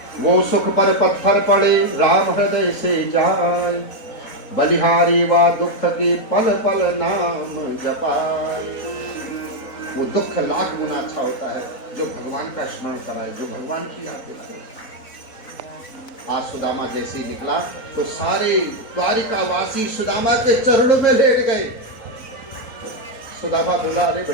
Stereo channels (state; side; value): late; right; 4.0 ms